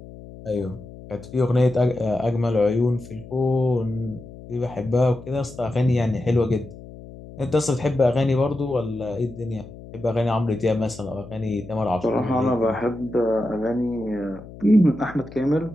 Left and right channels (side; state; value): left; noise; hum, 16 dB below the sound